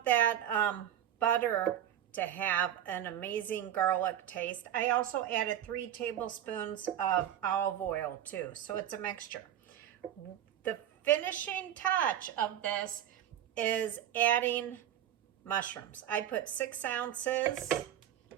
that butter to have an amazing garlic taste. I also added 3 tablespoons of olive oil too, so it's a mixture. The finishing touch of this is adding mushrooms. I put 6 ounces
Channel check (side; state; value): left; quieter; 10.8 dB